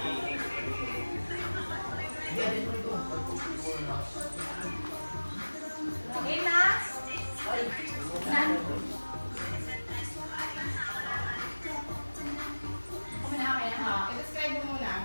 Okay na? Nan? Okay na, okay na. I-describe mo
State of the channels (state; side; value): inverted; both; correlation -1.00